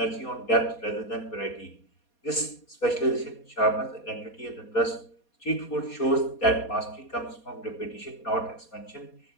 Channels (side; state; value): right; late; 4.2 ms